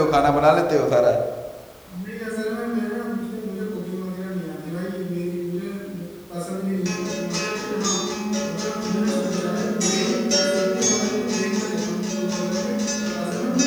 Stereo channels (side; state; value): both; identical; correlation 1.00